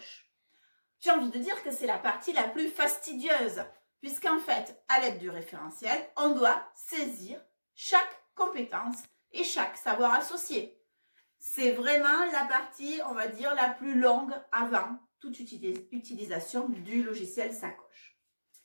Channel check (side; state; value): both; inverted; correlation -1.00